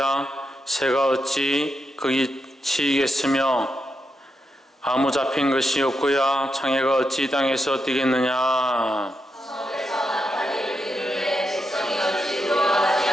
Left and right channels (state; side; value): normal; both; correlation 0.84